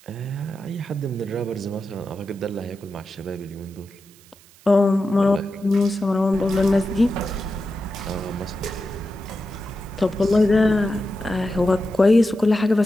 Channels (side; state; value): right; noise; hiss, 26 dB below the sound